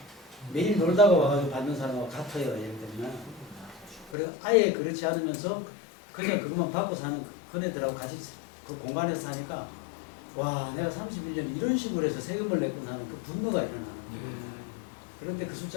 매일 놀다가 와가지고 받는 사람하고 같아요. 예를 들면. 그리고 아예 그렇지 않으면서 그냥 그것만 받고 사는 그네들하고 같이 그 공간에서 사니까 와 내가 31년 이런 식으로 해서 세금을 내고 나는 그 분노가 일어나는 거예요. 그런데 그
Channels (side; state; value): right; drops out; at 4.2 s